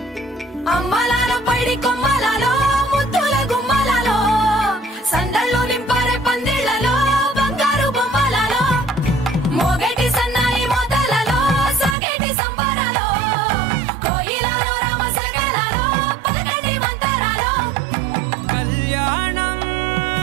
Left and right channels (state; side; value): drops out; left; at 12.0 s